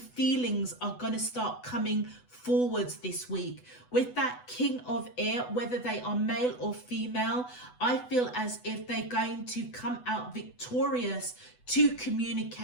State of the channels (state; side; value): late; right; 8.0 ms